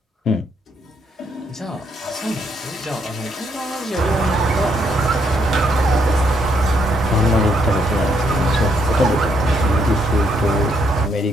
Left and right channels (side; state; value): both; normal; correlation 0.73